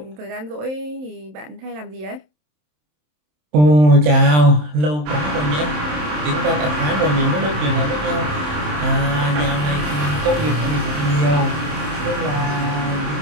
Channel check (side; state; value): left; late; 27 ms